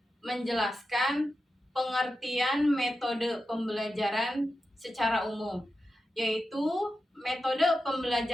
menjelaskan pengertian metode pembelajaran secara umum, yaitu metode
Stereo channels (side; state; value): both; normal; correlation 0.91